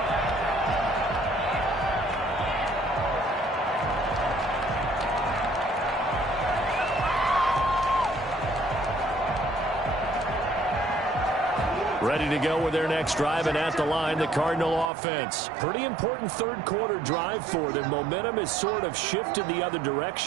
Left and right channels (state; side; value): drops out; left; at 14.9 s